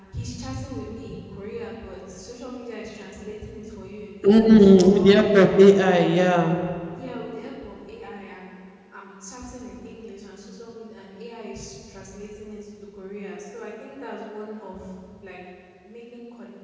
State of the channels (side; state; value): both; identical; correlation 1.00